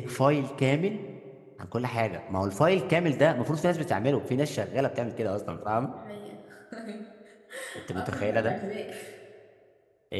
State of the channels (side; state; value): both; identical; correlation 1.00